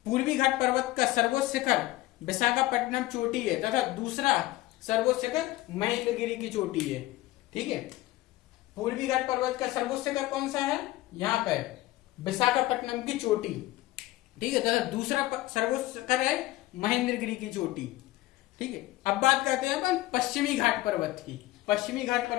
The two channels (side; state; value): right; quieter; 17.5 dB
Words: पूर्वी घाट पर्वत का सर्वोच्च शिखर विशाखापट्टनम चोटी है, तथा दूसरा सर्वोच्च शिखर महेंद्रगिरी की चोटी है। ठीक है, पूर्वी घाट पर्वत का सर्वोच्च शिखर कौन सा है? यहाँ पे विशाखापट्टनम की चोटी। ठीक है, तथा दूसरा सर्वोच्च शिखर है महेंद्रगिरी की चोटी। ठीक है, अब बात करते हैं अपन पश्चिमी घाट पर्वत की। पश्चिमी घाट